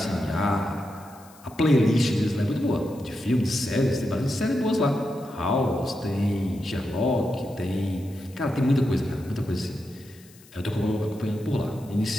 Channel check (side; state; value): left; noise; hiss, 25 dB below the sound